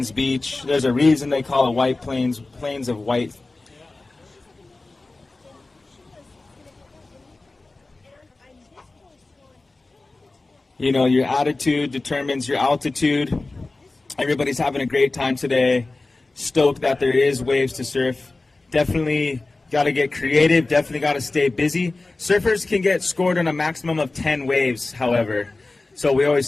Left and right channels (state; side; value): quieter; right; 3.3 dB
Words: beach. There's a reason they call it White Plains, plains of white. You know, your attitude determines your altitude. Everybody's having a great time today. Stoked that there is waves to surf. Definitely got to get creative. Definitely got to stay busy. Surfers can get scored on a maximum of 10 waves, however. So we always